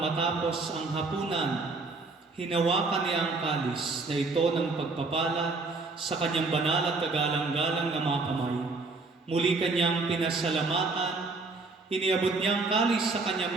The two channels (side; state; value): left; quieter; 3.7 dB